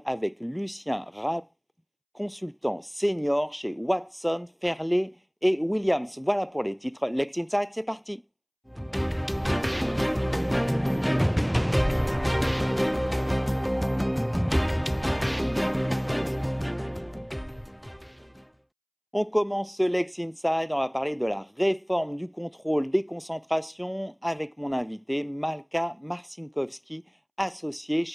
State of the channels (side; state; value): both; identical; correlation 1.00